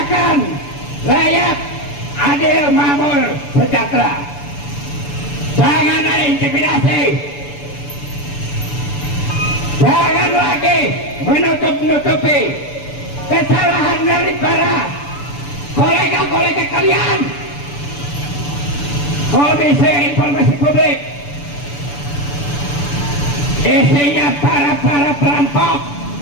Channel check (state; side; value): late; right; 6.9 ms